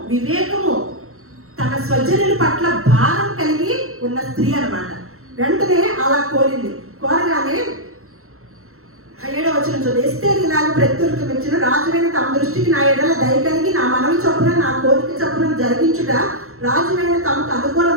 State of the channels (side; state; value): left; late; 0.63 ms